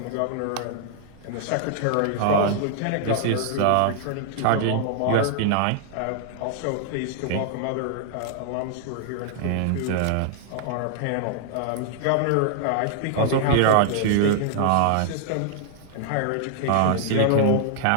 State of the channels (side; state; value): both; different; correlation -0.01